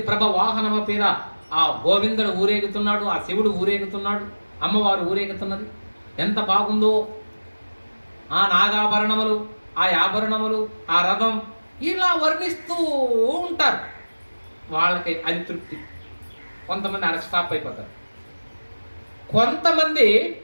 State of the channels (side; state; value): both; inverted; correlation -1.00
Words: ప్రభ వాహనమ పేర ఆ గోవిందుడు ఊరేగుతున్నాడు, ఆ శివుడు ఊరేగుతున్నాడు, అమ్మవారు ఊరేగుతున్నది, ఎంత బాగుందో. ఆ నాగాభరణములు, ఆ ఆభరణములు, ఆ రథం, ఇలా వర్ణిస్తూ ఉంటారు. వాళ్ళకి అది తృప్తి. కొంతమంది అక్కడ స్టాప్ అయిపోతారు. కొంతమంది